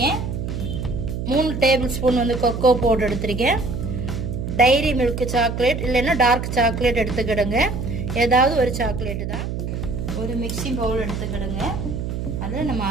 3 டேபிள் ஸ்பூன் வந்து கொக்கோ பவுடர் எடுத்திருக்கேன், டைரி மில்க் சாக்லேட் இல்லைன்னா டார்க் சாக்லேட் எடுத்துக்கிடுங்க, ஏதாவது ஒரு சாக்லேட்டு தான். ஒரு மிக்சிங் பவுல் எடுத்துக்கிடுங்க, அதில் நம்ம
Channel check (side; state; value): right; noise; hum, 4 dB below the sound